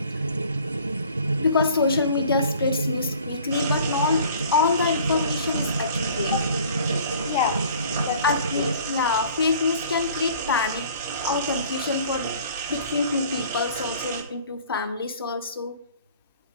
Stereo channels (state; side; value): inverted; both; correlation -0.50